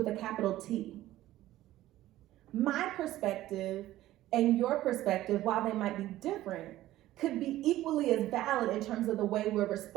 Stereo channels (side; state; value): left; quieter; 15.0 dB